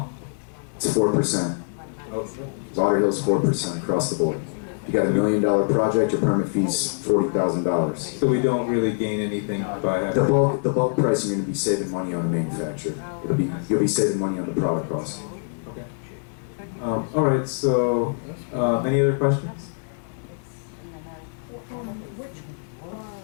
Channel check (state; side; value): silent; right; digital silence